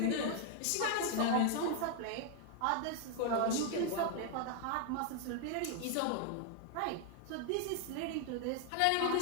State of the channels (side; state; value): both; different; correlation 0.00